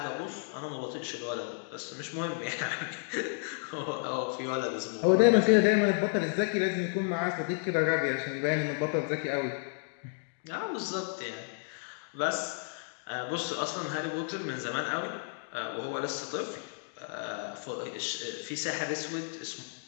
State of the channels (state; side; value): silent; right; 56 dB below the other